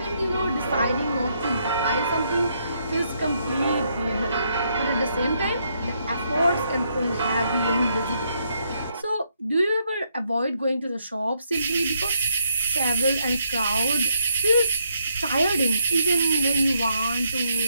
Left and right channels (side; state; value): both; inverted; correlation -0.76